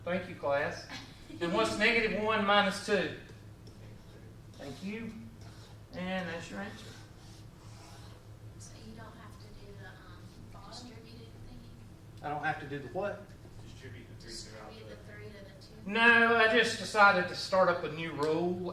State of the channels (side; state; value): both; identical; correlation 1.00